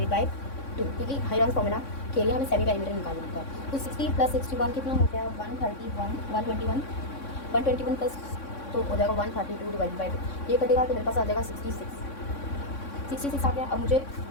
बाई 2, क्योंकि हाईरॉन्स फॉर्मूला के लिए हमें सेमी पेरीमीटर निकालना होता है। तो 60 प्लस 61 कितना हो गया, 121 प्लस तो हो जाएगा 132 डिवाइडेड बाई 2। ये कटेगा तो मेरे पास आ जाएगा 66 आ गया। अब मुझे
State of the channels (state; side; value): late; right; 3.6 ms